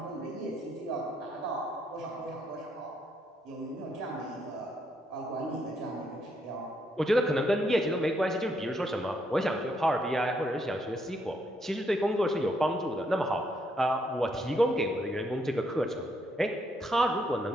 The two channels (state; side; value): normal; both; correlation 0.74